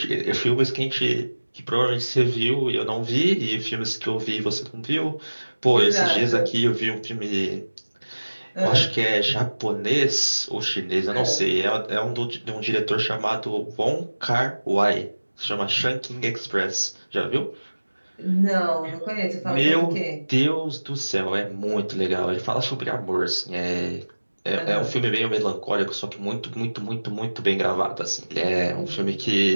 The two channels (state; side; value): inverted; both; correlation -1.00